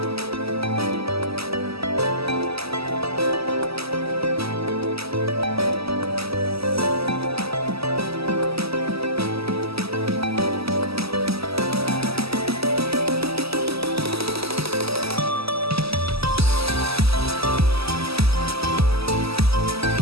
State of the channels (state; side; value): late; left; 0.77 ms